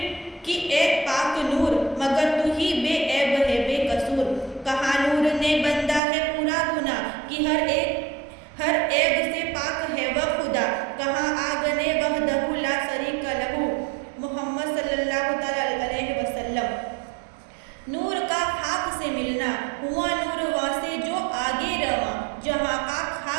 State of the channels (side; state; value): left; drops out; at 6.0 s